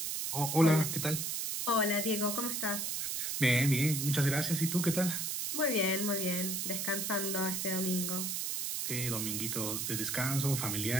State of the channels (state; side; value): noise; right; hiss, 1 dB below the sound